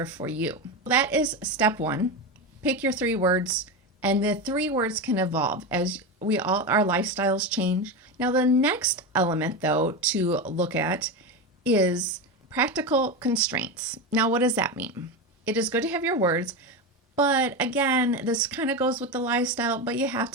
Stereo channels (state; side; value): normal; both; correlation 0.17